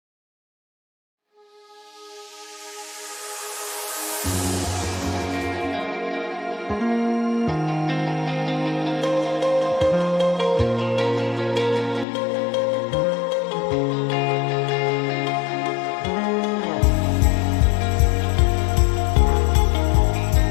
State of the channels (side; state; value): right; drops out; at 12.1 s